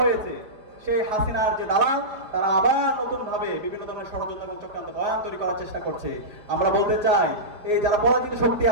হয়েছে, সেই হাসিনার যে দালাল, তারা আবার নতুন ভাবে বিভিন্ন ধরনের ষড়যন্ত্র এবং চক্রান্ত বয়ান তৈরি করার চেষ্টা করছে। আমরা বলতে চাই, এই যারা পরাজিত শক্তি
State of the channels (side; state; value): left; late; 4.7 ms